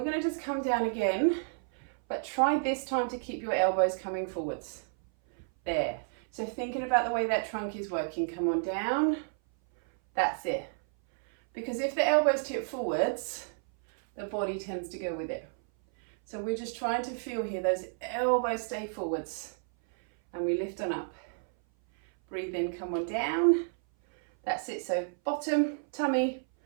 going to just come down again, but try this time to keep your elbows coming forwards. There. So thinking about the way that trunk is working, come on down, that's it. Because if the elbows tip forwards, the body tends to go with it. So we're just trying to feel here, those elbows stay forwards, and we lift on up. Breathe in, come on down. That's it, so bottom, tummy,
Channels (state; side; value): silent; left; 57 dB below the other